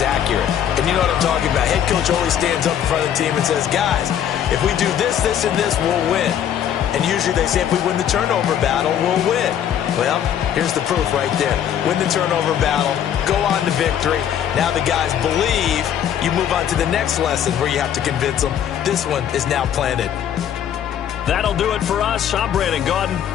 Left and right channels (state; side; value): quieter; right; 9.7 dB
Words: accurate. And you know what I'm talking about. Head coach always stands up in front of the team and says, guys, if we do this, this, and this, we'll win. And usually they say if we win the turnover battle, we'll win. Well, here's the proof right there. Win the turnover battle, go on to victory. Now the guys believe. You move on to the next lesson where you have to convince them. This one is now planted. That'll do it for us. I'm Brandon Gaudin